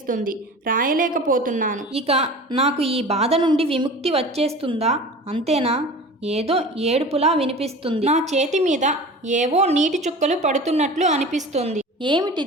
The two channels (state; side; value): normal; both; correlation 0.37